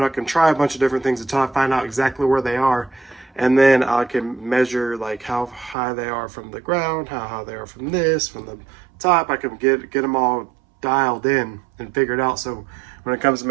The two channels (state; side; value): drops out; left; at 5.8 s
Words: I can try a bunch of different things until I find out exactly where they are, and then I can measure like how high they are from the ground, how high they are from the top. I can get them all dialed in and figured out, so when it comes to